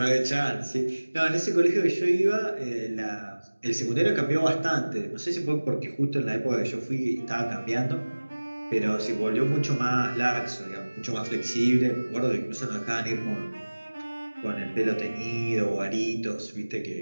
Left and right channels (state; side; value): inverted; both; correlation -1.00